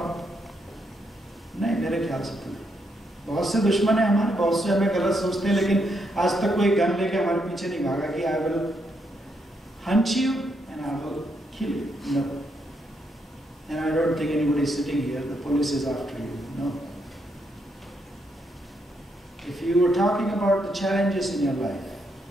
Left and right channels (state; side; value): normal; both; correlation 0.78